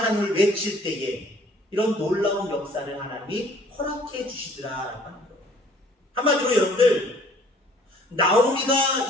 외칠 때에 이런 놀라운 역사를 하나님이 허락해 주시더라라고 하는 거예요. 한마디로 여러분들, 나오미가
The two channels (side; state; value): both; normal; correlation 0.56